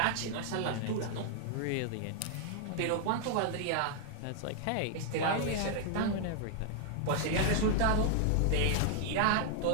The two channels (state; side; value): different; both; correlation 0.00